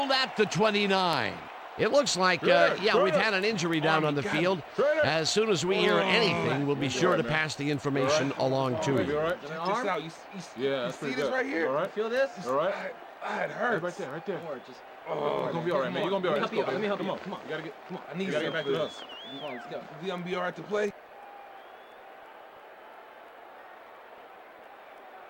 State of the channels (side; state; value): both; identical; correlation 1.00